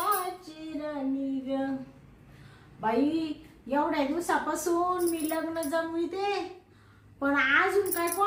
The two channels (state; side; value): identical; both; correlation 1.00